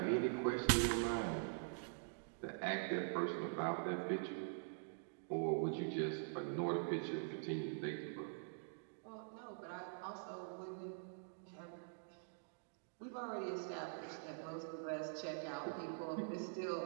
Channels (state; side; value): silent; left; digital silence